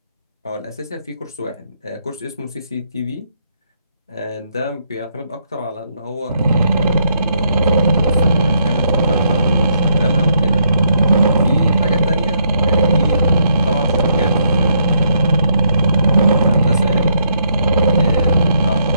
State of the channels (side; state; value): both; inverted; correlation -0.74